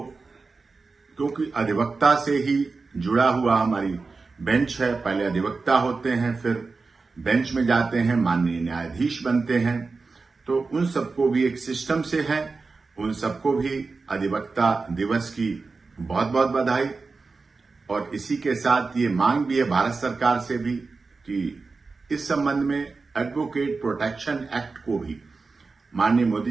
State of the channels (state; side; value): quieter; left; 4.2 dB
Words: क्योंकि अधिवक्ता से ही जुड़ा हुआ हमारी बेंच है, पहले अधिवक्ता होते हैं, फिर बेंच में जाते हैं, माननीय न्यायाधीश बनते हैं, तो उन सबको भी एक सिस्टम से है, उन सबको भी अधिवक्ता दिवस की बहुत बहुत बधाई। और इसी के साथ ये मांग भी है भारत सरकार से भी कि इस संबंध में एडवोकेट प्रोटेक्शन एक्ट को भी माननीय